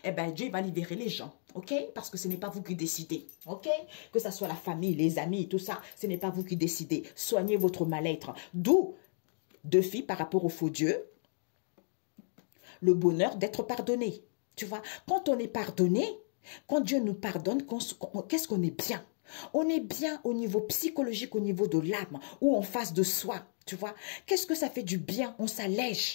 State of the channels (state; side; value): silent; right; digital silence